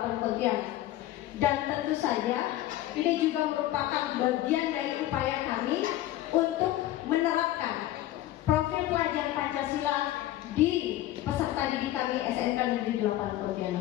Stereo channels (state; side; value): quieter; right; 14.3 dB